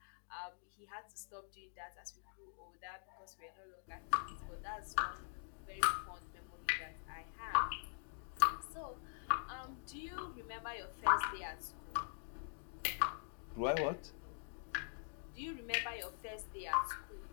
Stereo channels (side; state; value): right; silent; digital silence